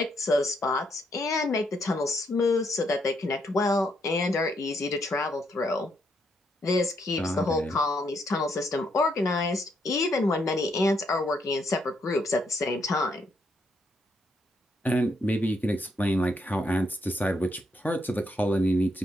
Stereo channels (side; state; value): both; normal; correlation 0.75